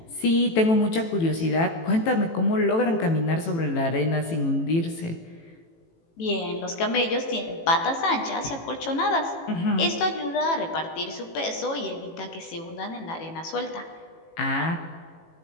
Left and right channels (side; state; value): right; late; 18 ms